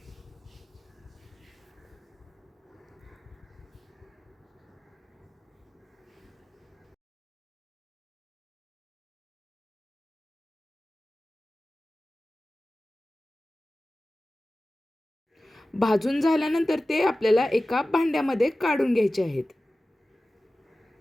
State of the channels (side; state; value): both; normal; correlation 0.96